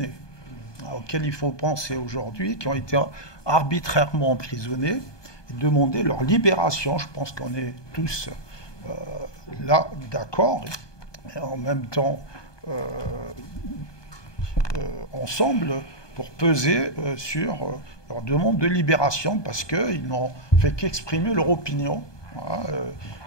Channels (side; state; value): right; late; 1.2 ms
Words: auxquels il faut penser aujourd'hui, qui ont été arbitrairement emprisonnés, et demander leur libération. Je pense qu'on est tous là d'accord, et en même temps ensemble, pour peser sur leur demande de libération, parce qu'ils n'ont fait qu'exprimer leur opinion,